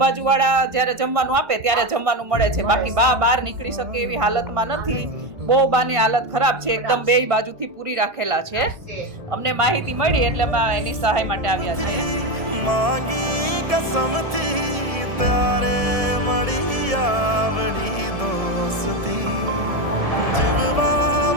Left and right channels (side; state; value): left; late; 1.7 ms